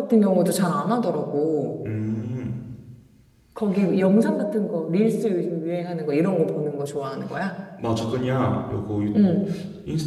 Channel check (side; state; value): both; identical; correlation 1.00